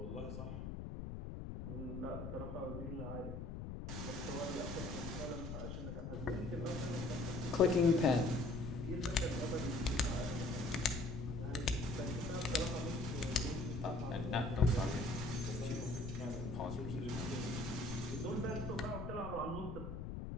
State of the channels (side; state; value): left; noise; rumble, 6 dB below the sound